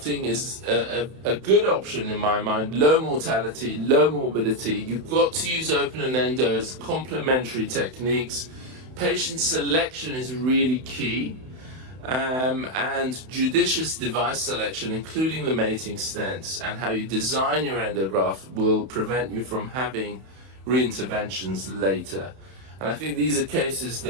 is a good option in my mind. Low mortality, low morbidity. You've got to use open and endo as complementary techniques. Patient selection is really key. And judicious device selection, including the mating stents, and how you design your endograft will prevent you from having reinterventions later. And I think these are cases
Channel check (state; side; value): late; left; 31 ms